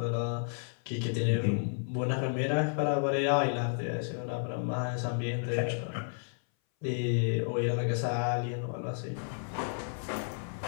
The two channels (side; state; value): right; silent; 57 dB below the other